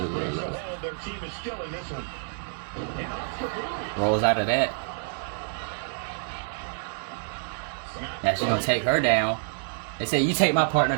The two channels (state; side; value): silent; left; 60 dB below the other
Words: Rolls out of that. Now she's gonna take her down. They say, you take my partner